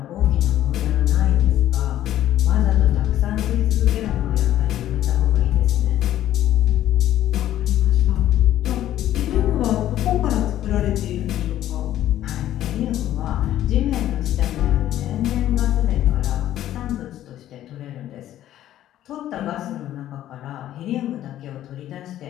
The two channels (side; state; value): right; quieter; 12.6 dB